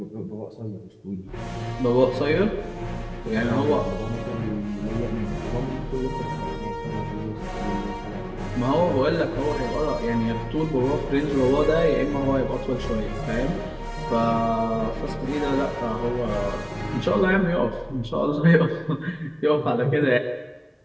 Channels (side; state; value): both; identical; correlation 1.00